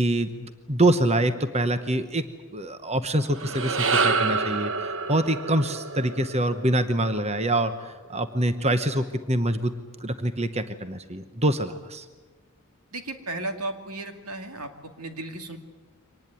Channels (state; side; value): normal; both; correlation 0.48